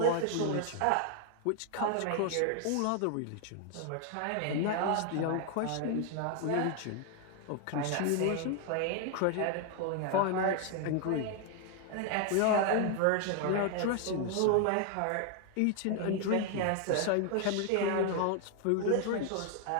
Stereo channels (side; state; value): both; different; correlation 0.00